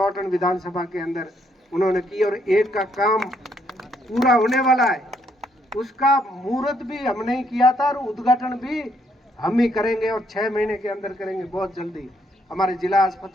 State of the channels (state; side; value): normal; both; correlation 0.72